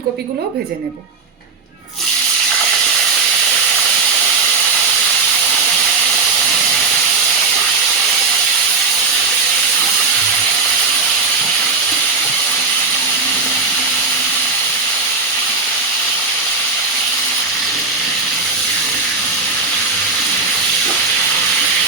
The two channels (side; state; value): left; quieter; 4.5 dB